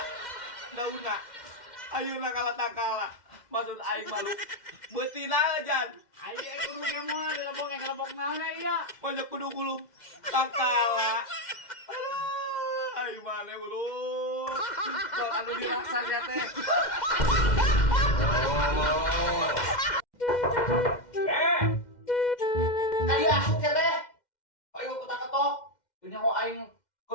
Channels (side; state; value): right; late; 2.1 ms